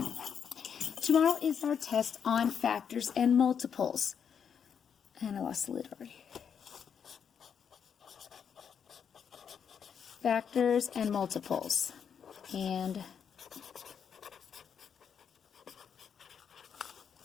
Tomorrow is our test on factors and multiples. And I lost the lid already. Factors and multiples. And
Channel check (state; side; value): quieter; right; 7.4 dB